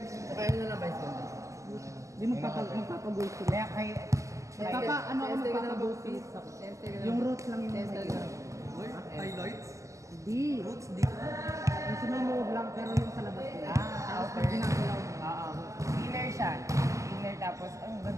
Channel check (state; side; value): late; left; 0.16 ms